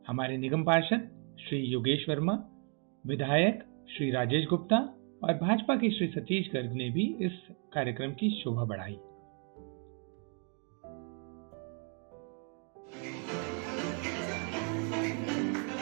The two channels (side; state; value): left; quieter; 39.9 dB